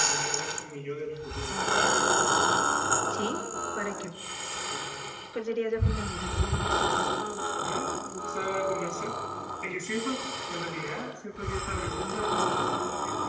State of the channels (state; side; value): identical; both; correlation 1.00